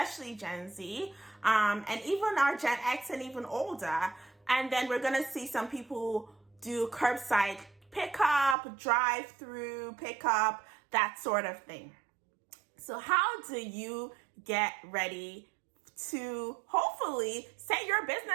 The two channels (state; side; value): drops out; left; at 8.6 s